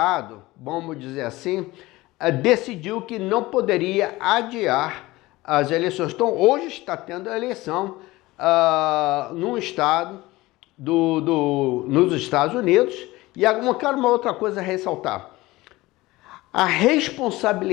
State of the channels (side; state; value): right; quieter; 19.5 dB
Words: vamos dizer assim, decidiu que não poderia adiar as eleições. Então, hoje está tendo a eleição num estado nos Estados Unidos. E quero uma outra coisa a ressaltar. A